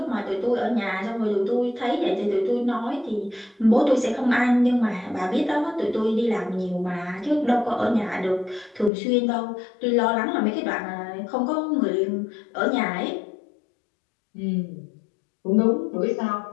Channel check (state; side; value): drops out; right; at 8.9 s